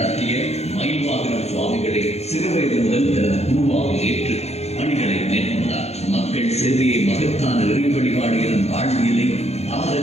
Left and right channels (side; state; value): right; late; 0.31 ms